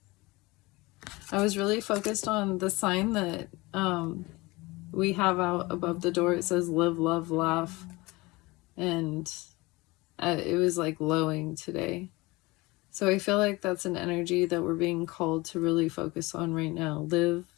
I was really focused on the sign that we have out above the door. It says live, love, laugh. And it was like lowing today. So I feel like that's an energy that we're being called to really focus on right now. Live,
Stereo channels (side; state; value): right; quieter; 22.6 dB